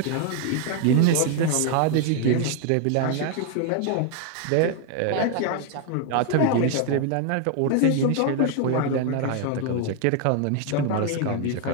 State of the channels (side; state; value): both; different; correlation 0.00